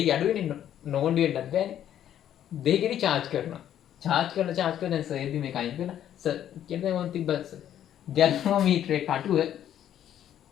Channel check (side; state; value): right; quieter; 10.7 dB